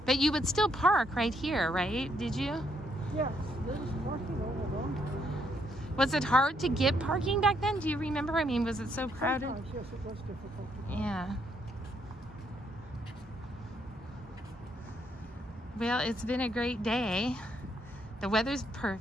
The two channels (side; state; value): both; normal; correlation 0.73